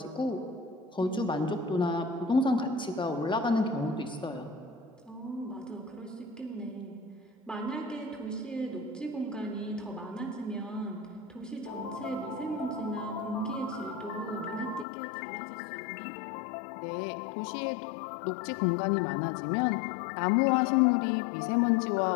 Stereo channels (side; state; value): right; drops out; at 14.9 s